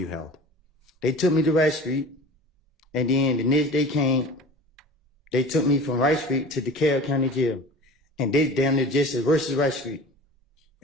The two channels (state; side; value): normal; both; correlation 0.39